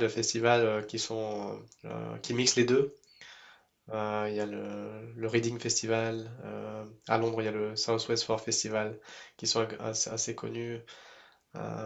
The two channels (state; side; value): identical; both; correlation 1.00